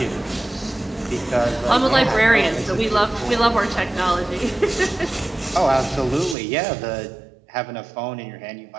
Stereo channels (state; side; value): drops out; left; at 6.4 s